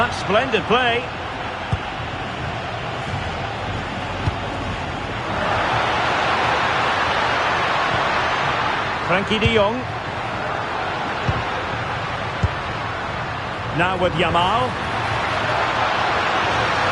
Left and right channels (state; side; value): identical; both; correlation 1.00